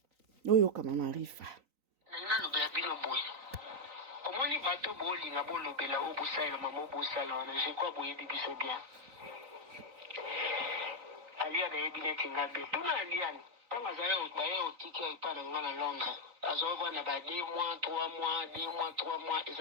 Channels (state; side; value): late; left; 3.9 ms